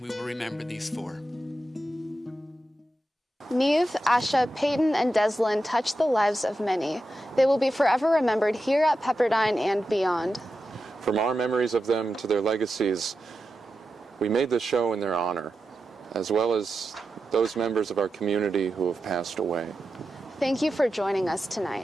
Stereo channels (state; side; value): normal; both; correlation 0.90